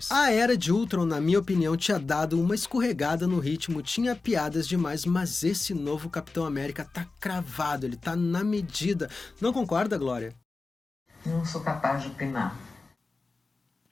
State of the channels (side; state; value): right; quieter; 3.7 dB